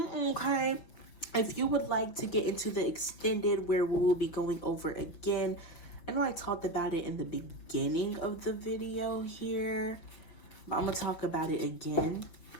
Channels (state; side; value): late; right; 5.9 ms